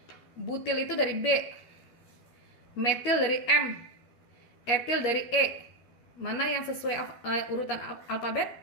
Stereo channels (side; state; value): right; late; 13 ms